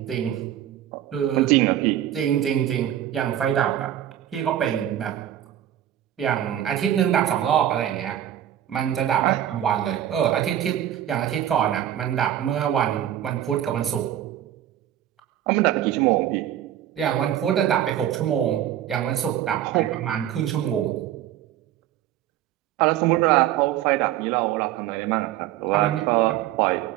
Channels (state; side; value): quieter; left; 11.6 dB